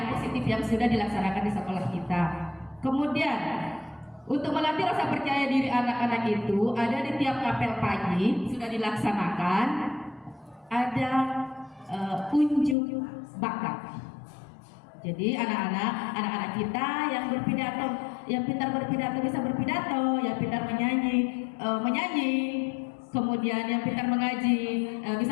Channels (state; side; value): drops out; right; at 12.8 s